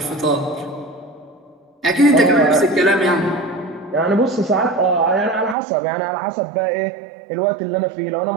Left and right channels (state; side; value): drops out; left; at 5.6 s